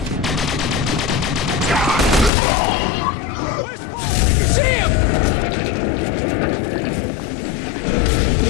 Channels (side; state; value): right; drops out; at 2.3 s